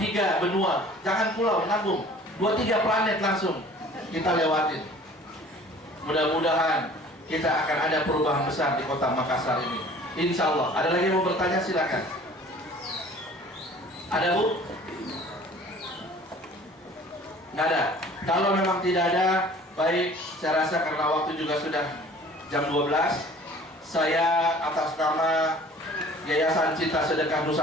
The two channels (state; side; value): normal; both; correlation 0.49